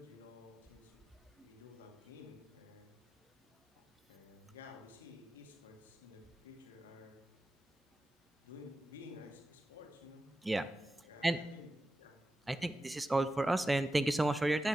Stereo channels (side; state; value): both; normal; correlation 0.92